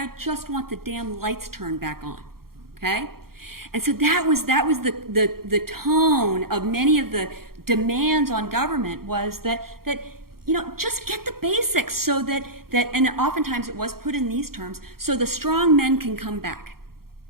just want the damn lights turned back on, okay? And so that was the tone of many of the demands on government was that just get the basics so that, and oftentimes it was put in these terms, so the strong men can come back.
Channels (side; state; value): left; late; 0.93 ms